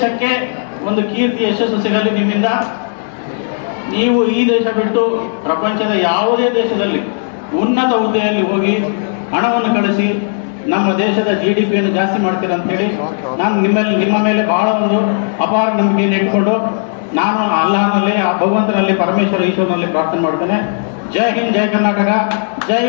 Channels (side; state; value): right; silent; digital silence